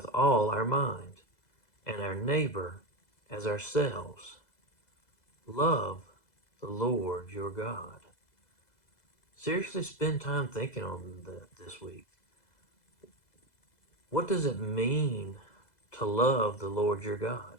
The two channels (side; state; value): right; late; 2.0 ms